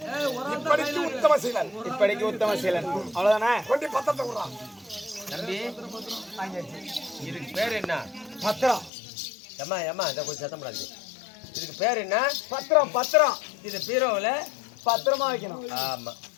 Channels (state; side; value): drops out; right; at 8.9 s